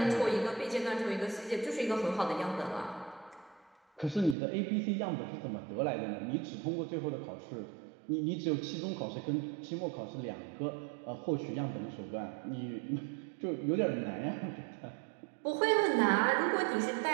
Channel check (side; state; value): left; drops out; at 4.4 s